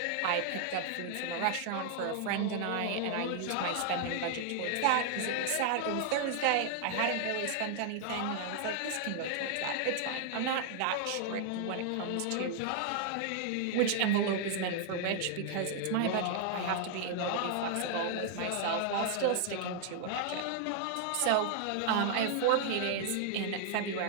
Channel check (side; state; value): both; different; correlation 0.00